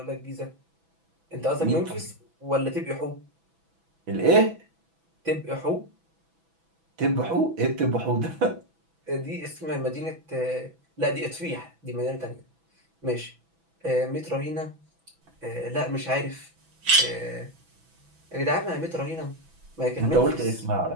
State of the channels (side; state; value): left; late; 6.1 ms